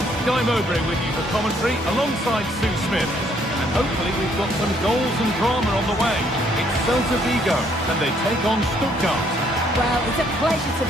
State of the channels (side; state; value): both; normal; correlation 0.67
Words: Guy Mowbray with you for commentary alongside Sue Smith. And hopefully we've got some goals and drama on the way. It's Celta Vigo and they take on Stuttgart. Well, it's a pleasure to